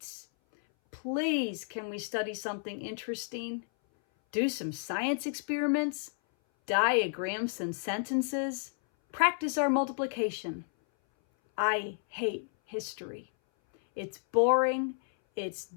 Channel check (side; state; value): right; silent; 57 dB below the other